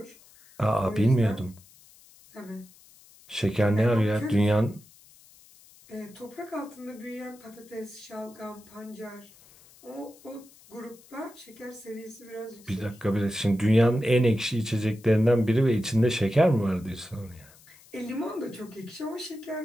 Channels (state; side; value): noise; left; hiss, 25 dB below the sound